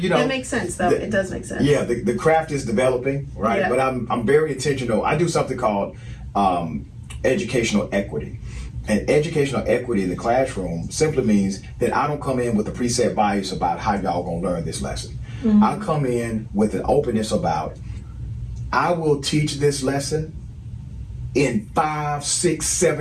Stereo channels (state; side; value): identical; both; correlation 1.00